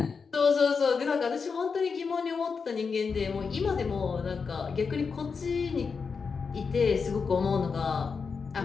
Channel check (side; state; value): right; quieter; 5.3 dB